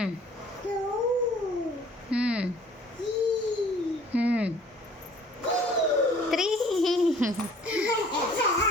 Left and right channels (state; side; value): normal; both; correlation 0.53